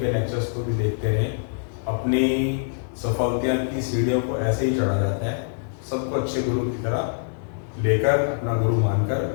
लेक्चर्स को भी देखते रहें। अपनी सफलता की सीढ़ियों को ऐसे ही चढ़ा जाता है। सबको अच्छे गुरु की तरह लेकर, अपना गुरु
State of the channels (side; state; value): right; silent; digital silence